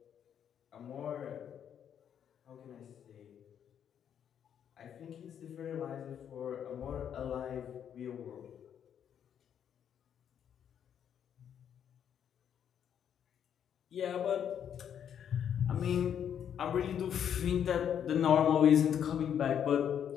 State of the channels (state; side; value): quieter; right; 8.9 dB